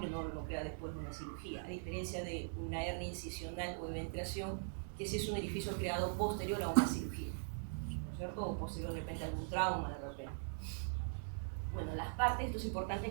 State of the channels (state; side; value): silent; left; 50 dB below the other